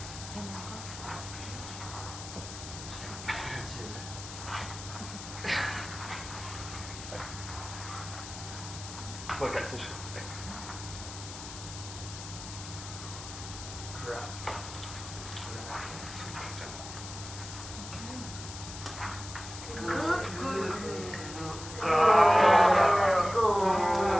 Look at this.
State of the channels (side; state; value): left; noise; hiss, 11 dB below the sound